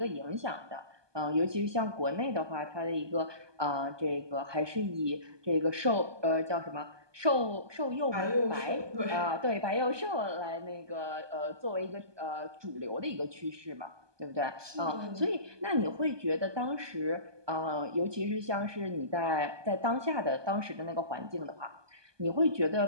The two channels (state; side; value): late; left; 1.2 ms